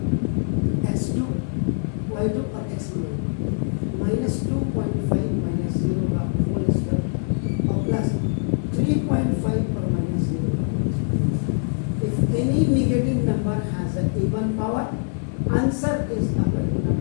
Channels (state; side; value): silent; right; 63 dB below the other